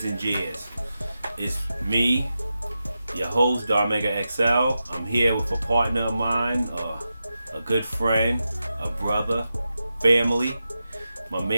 and jeers. It's me, your host, Darmega XL. I'm here with a partner of mine, a good friend, a brother, family, my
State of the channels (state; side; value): inverted; both; correlation -0.90